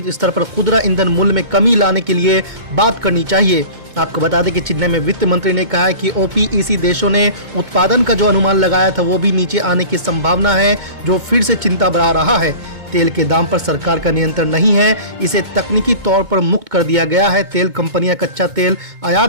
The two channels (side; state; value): left; late; 2.2 ms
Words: स्तर पर खुदरा ईंधन मूल्य में कमी लाने के लिए बात करनी चाहिए। आपको बता दें कि चेन्नई में वित्त मंत्री ने कहा है कि ओपीईसी देशों ने उत्पादन का जो अनुमान लगाया था वो भी नीचे आने की संभावना है, जो फिर से चिंता बढ़ा रहा है। तेल के दाम पर सरकार का नियंत्रण नहीं है, इसे तकनीकी तौर पर मुक्त कर दिया गया है। तेल कंपनियां कच्चा तेल